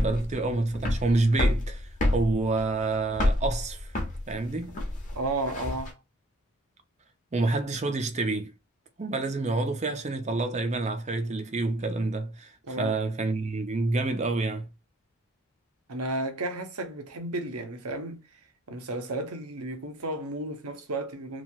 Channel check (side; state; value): both; normal; correlation 0.61